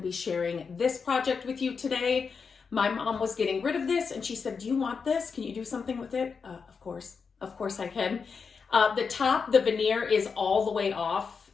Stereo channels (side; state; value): right; quieter; 5.5 dB